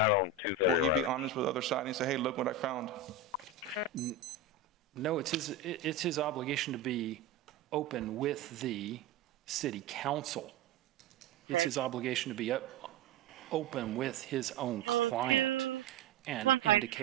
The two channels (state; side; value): quieter; left; 4.7 dB